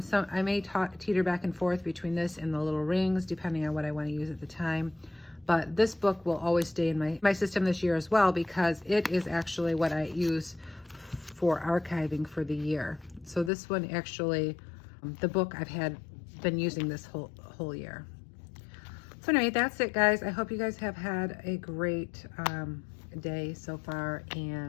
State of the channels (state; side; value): drops out; right; at 13.5 s